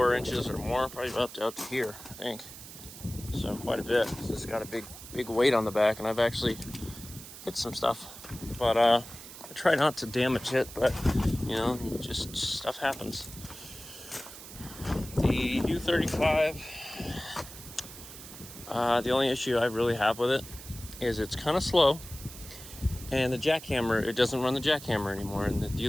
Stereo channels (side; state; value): right; noise; hiss, 14 dB below the sound